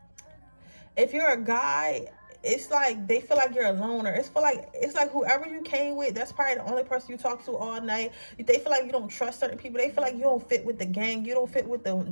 If you're a guy, it's like they feel like you're a loner. It's like whoever you came with, that's probably the only person you talk to all night. They feel like you don't trust certain people. They feel like you don't fit with the gang. You don't fit with the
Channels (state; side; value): inverted; both; correlation -1.00